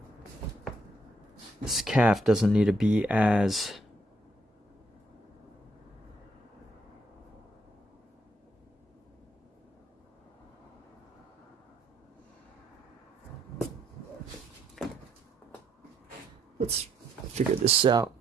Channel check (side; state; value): both; normal; correlation 0.72